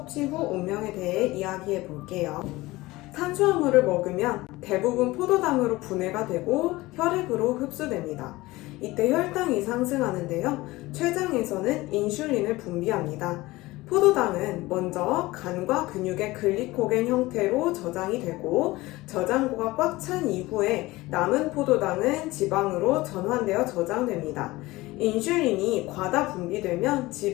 후 운명에 대해 이야기해 볼게요. 탄수화물을 먹으면 대부분 포도당으로 분해가 되고 혈액으로 흡수됩니다. 이때 혈당이 상승하는데요. 췌장에서는 인슐린을 분비합니다. 포도당은 먼저 간과 근육의 글리코겐 형태로 저장이 되고 저장고가 꽉 찬 이후에 남은 포도당은 지방으로 전환되어 저장됩니다. 인슐린이 과다 분비되면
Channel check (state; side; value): quieter; right; 19.7 dB